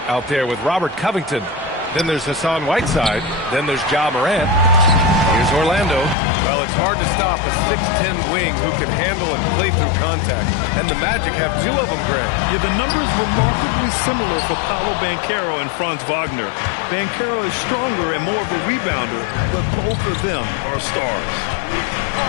out there with Robert Covington. Then there's Hassan Whiteside. Then there's Ja Morant. Here's Orlando. Well, it's hard to stop a 6'10 wing who can handle and play through contact. And the Magic have 2 of them, Grant. Yeah, the numbers remarkably similar for Paolo Banchero and Franz Wagner. Banchero is stronger and more of a rebounder, but both of them are stars.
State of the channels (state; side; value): drops out; right; at 6.2 s